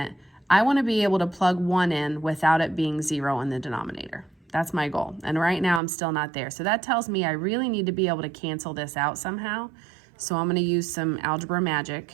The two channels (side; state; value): left; drops out; at 5.8 s